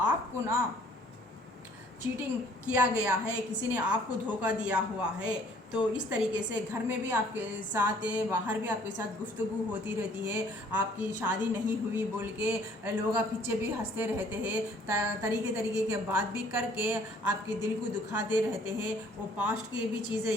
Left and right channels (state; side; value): normal; both; correlation 0.58